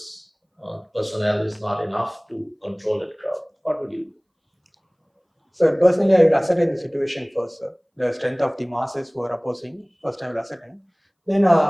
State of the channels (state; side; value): identical; both; correlation 1.00